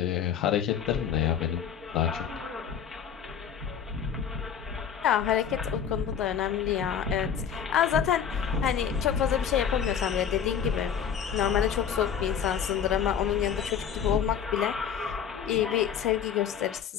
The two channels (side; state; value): right; quieter; 8.1 dB